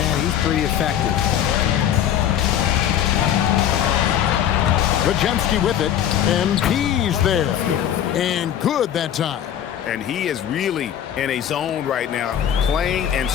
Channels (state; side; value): quieter; right; 10.1 dB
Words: he's pretty effective. Podziemski with it, and he's there. And good that time. And he is really in a zone right now, playing and